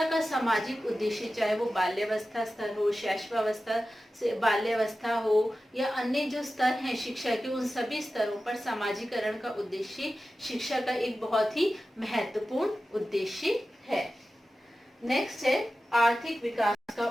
का सामाजिक उद्देश्य, चाहे वो बाल्यावस्था स्तर हो, शैशवावस्था से बाल्यावस्था हो या अन्य जो स्तर हैं शिक्षा के, उन सभी स्तरों पर समाजीकरण का उद्देश्य शिक्षा का एक बहुत ही महत्वपूर्ण उद्देश्य है। नेक्स्ट है आर्थिक विकास का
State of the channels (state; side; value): normal; both; correlation 0.94